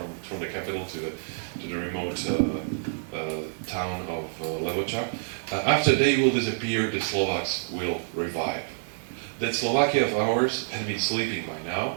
the capital to the remote town of Levoča. After they will disappear, the Slovaks will revive. That Slovakia of ours had been sleeping by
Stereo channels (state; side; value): silent; left; digital silence